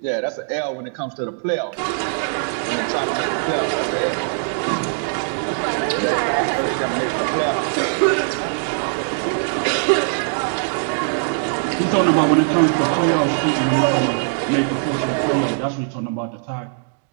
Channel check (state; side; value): silent; left; digital silence